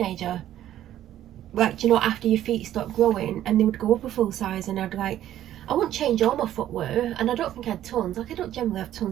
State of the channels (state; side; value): quieter; left; 12.2 dB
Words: Like, you know, after your feet stop growing, and they would go up a full size, and I'd like, I wouldn't change all my footwear, and I don't think I had tons. Like, I don't generally have